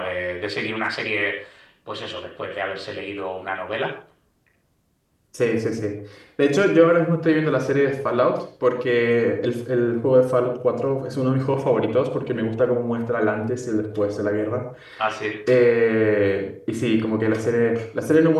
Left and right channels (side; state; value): both; identical; correlation 1.00